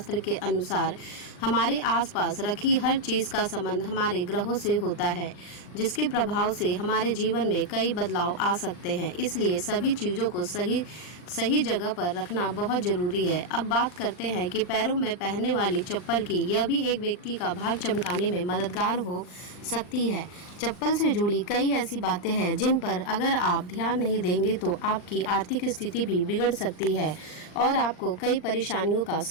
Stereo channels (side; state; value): right; late; 39 ms